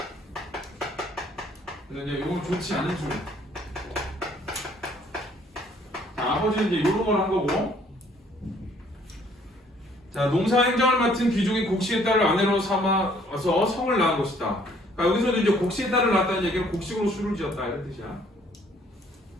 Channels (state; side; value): normal; both; correlation 0.62